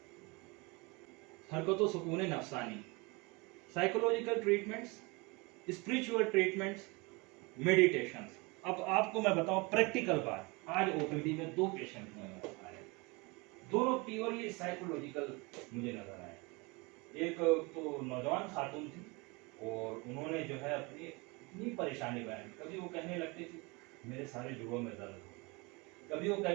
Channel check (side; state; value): left; quieter; 27.0 dB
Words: हरकतों सुकून नफसानी, psychological treatments, spiritual treatments, meditation. अब आपको मैं बताऊं प्रैक्टिकल बात, आज ओपीडी में 2 पेशेंट आए, दोनों प्योरली साइकोलॉजिकल मुझे नजर आए। एक तो नौजवान खातून थी और उन्होंने जो है अपनी इतनी परेशानी बयान, कभी वो कहने लगती थी मेरे सारे जोड़ों में दर्द होता है, कभी वो